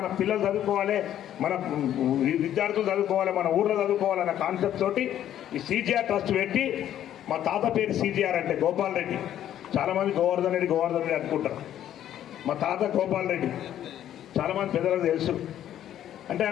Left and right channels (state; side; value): quieter; right; 11.3 dB